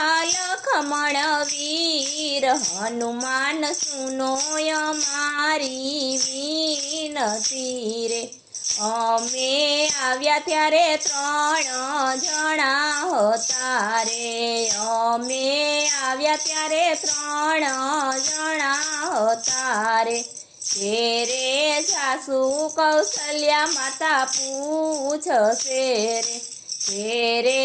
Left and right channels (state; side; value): identical; both; correlation 1.00